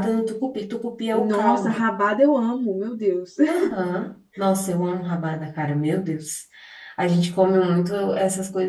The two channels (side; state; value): both; identical; correlation 1.00